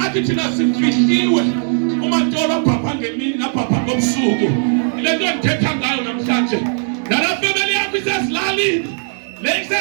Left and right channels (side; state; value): left; silent; 66 dB below the other